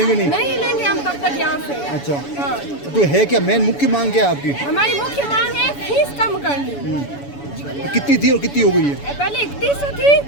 नहीं? नहीं हिलेंगे हम तब तक यहाँ से। अच्छा, हाँ। तो है क्या मेन मुख्य मांग क्या है आपकी? हमारी मुख्य मांग है फीस कम करनी। कितनी थी और कितनी हो गई है? पहले 3100 थी,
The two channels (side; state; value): right; late; 7.0 ms